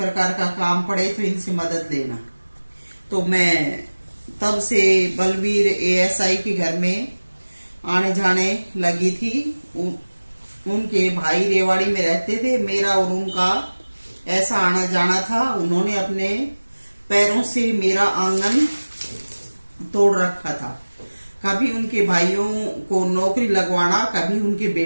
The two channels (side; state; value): both; inverted; correlation -1.00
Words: का काम पड़े तो इनसे मदद लेना। तो मैं तब से बलबीर एएसआई के घर में आने जाने लगी थी। उनके भाई रेवाड़ी में रहते थे। मेरा और उनका ऐसा आना जाना था। उन्होंने अपने पैरों से मेरा आंगन तोड़ रखा था। कभी उनके भाइयों को नौकरी लगवाना, कभी उनके